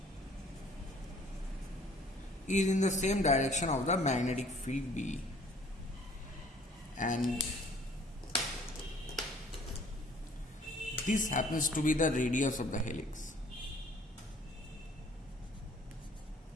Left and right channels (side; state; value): both; normal; correlation 0.56